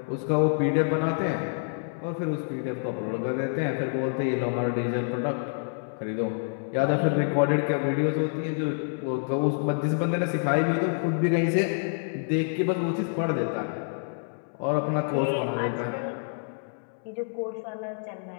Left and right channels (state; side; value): silent; right; 60 dB below the other